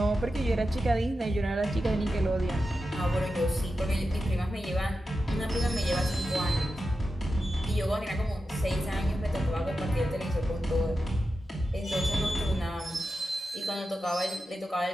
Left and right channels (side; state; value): both; normal; correlation 0.91